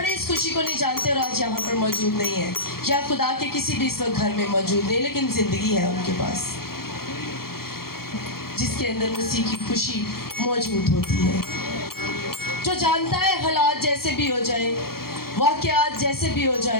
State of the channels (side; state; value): right; late; 0.94 ms